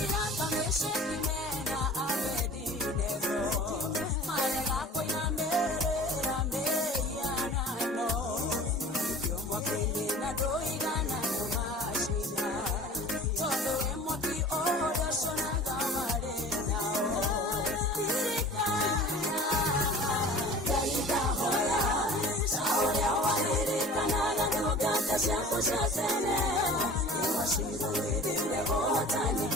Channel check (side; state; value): both; normal; correlation 0.42